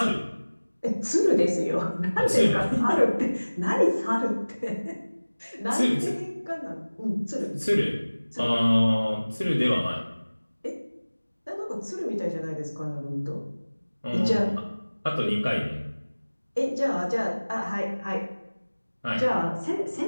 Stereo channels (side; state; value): both; inverted; correlation -1.00